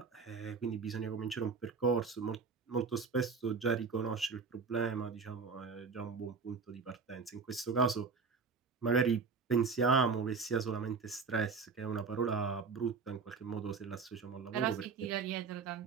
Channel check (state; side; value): quieter; left; 5.0 dB